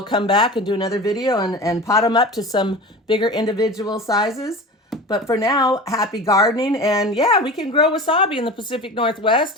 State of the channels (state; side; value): normal; both; correlation 0.33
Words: come back and do another video and pot them up to some bigger individual sizes. But for now, happy gardening. And yeah, we can grow wasabi in the Pacific